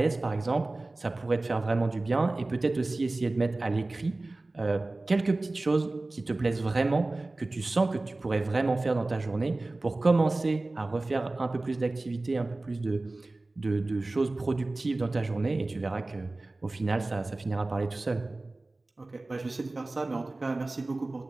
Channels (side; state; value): left; quieter; 3.0 dB